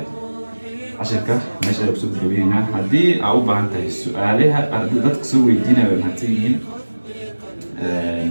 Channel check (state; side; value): inverted; both; correlation -1.00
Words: عشان كده ماشي أقصد جبينا هدي أو بعنت السؤالها ضدك سوي دينا بالمهتين